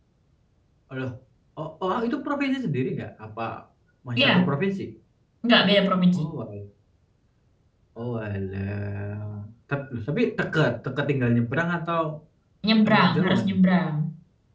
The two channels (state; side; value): identical; both; correlation 1.00